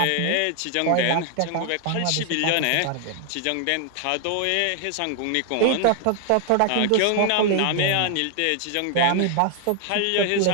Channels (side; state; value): both; different; correlation 0.00